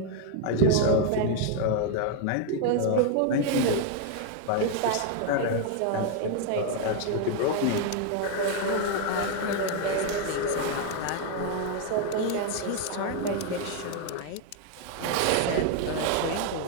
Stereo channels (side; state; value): both; different; correlation 0.00